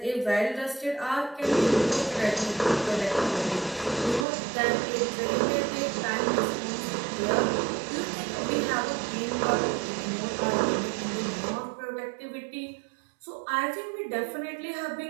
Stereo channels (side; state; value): left; drops out; at 4.2 s